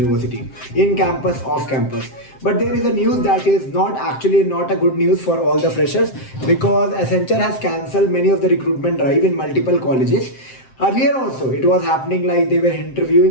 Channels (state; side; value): late; right; 7.6 ms